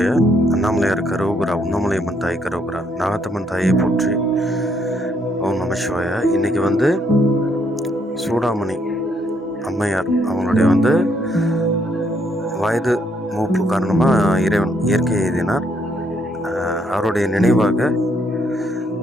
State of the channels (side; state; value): both; normal; correlation 0.72